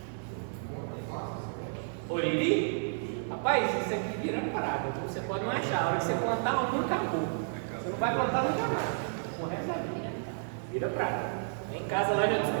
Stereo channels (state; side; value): silent; left; 57 dB below the other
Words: Oriri? Rapaz, isso aqui vira parada. Você pode não achar. A hora que você plantar, nunca acabou. Você não vai plantar nunca mais. O resto da vida. Vira prata. Em casa lá já